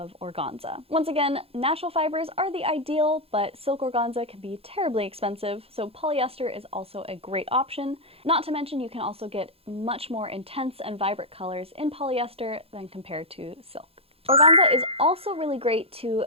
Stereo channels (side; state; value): left; late; 0.28 ms